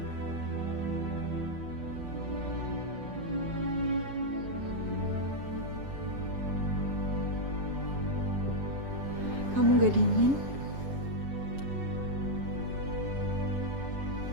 Kamu gak dingin?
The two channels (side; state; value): left; late; 7.4 ms